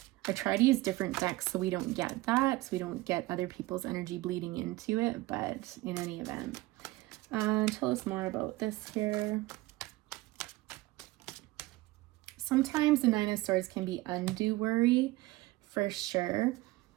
I try to use different decks so we don't get that, so we don't get other people's energy bleeding into it, but in any event. Tell us more about this here. Sometimes the Nine of Swords can be undue worry, for sure.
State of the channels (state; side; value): quieter; left; 19.2 dB